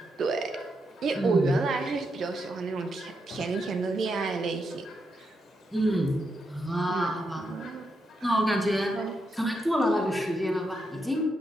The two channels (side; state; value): both; normal; correlation 0.83